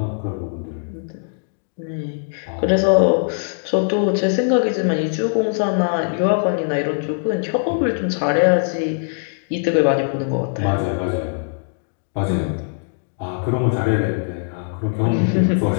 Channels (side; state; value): right; silent; digital silence